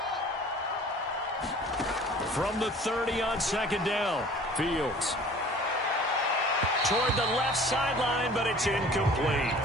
From the 30 on 2nd down, Fields. Toward the left sideline, but it's incomplete.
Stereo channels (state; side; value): normal; both; correlation 0.47